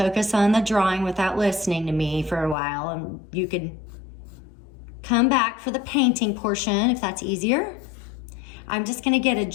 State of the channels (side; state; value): right; drops out; at 2.6 s